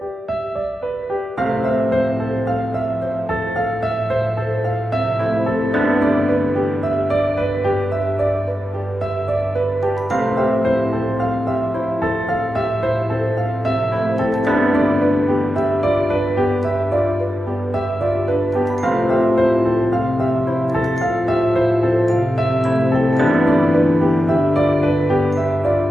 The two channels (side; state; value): both; normal; correlation 0.90